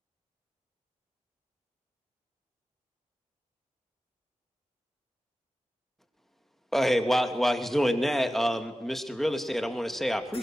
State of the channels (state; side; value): normal; both; correlation 0.94